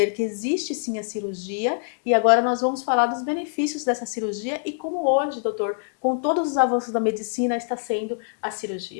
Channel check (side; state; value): right; silent; digital silence